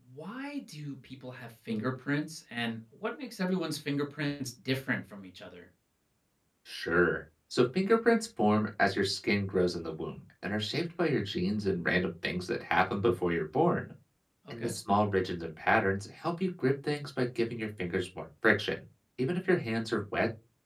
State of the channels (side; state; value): both; identical; correlation 1.00